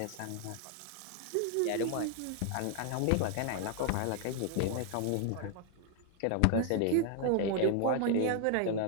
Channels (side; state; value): both; different; correlation 0.00